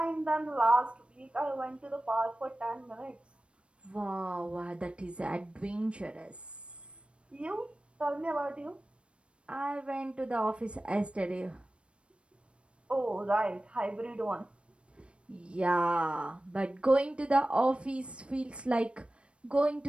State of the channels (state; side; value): late; left; 0.059 ms